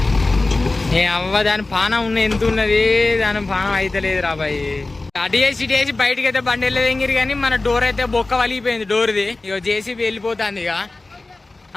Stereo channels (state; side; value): quieter; right; 3.2 dB